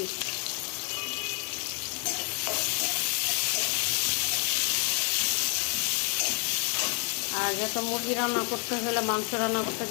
আর যত মুরগি রান্না করতে হলে, মাংস রান্না করতে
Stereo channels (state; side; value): quieter; right; 34.6 dB